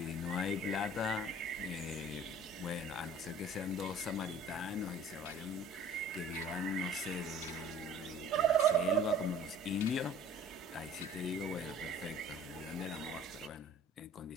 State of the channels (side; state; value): both; normal; correlation 0.49